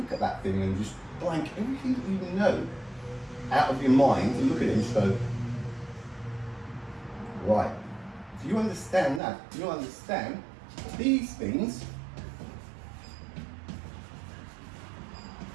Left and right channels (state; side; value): drops out; left; at 9.2 s